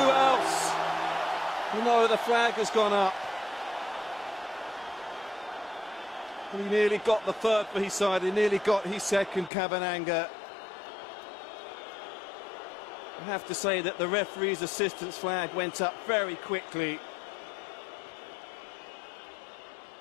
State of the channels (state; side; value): drops out; right; at 9.5 s